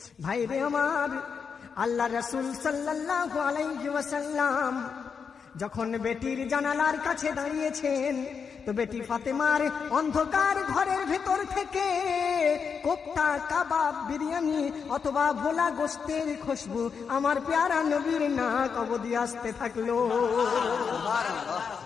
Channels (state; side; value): quieter; right; 6.1 dB